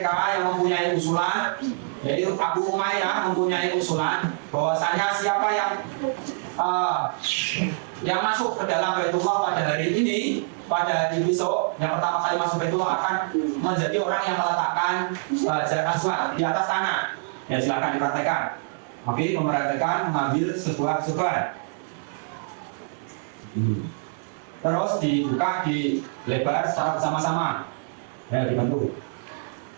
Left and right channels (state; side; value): silent; left; digital silence